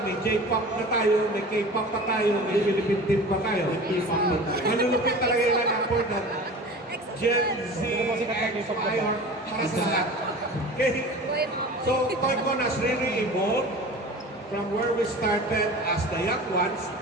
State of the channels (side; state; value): both; normal; correlation 0.38